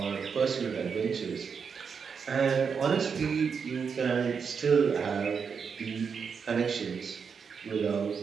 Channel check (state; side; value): quieter; left; 6.1 dB